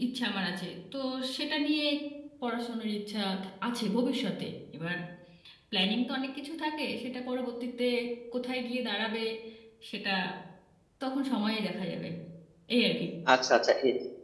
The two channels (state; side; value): identical; both; correlation 1.00